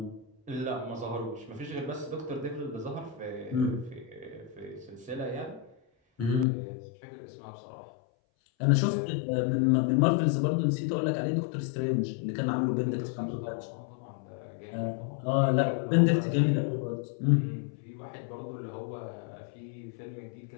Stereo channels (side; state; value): right; drops out; at 6.5 s